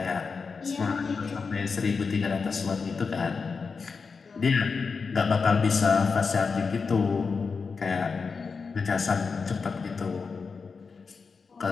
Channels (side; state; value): right; quieter; 5.0 dB